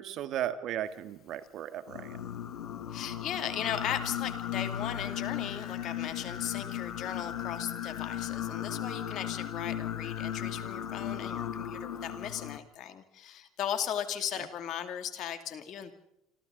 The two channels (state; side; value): quieter; right; 6.4 dB